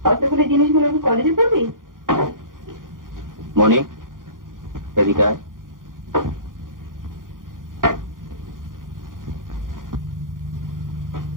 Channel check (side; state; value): left; late; 0.90 ms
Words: কতগুলো জিনিসগুলো কলেজে পড়বি? মনি এদিকে আয়।